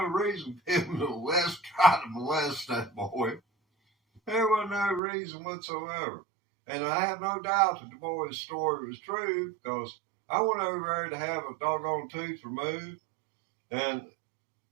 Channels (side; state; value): left; drops out; at 5.0 s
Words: reason for him to try to molest that boy. There wasn't no reason whatsoever. And I have no doubt that the boy's story was true because I went over there to have a doggone tooth removed, and